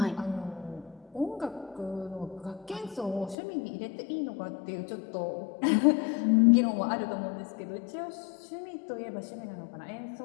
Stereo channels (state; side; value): drops out; right; at 3.4 s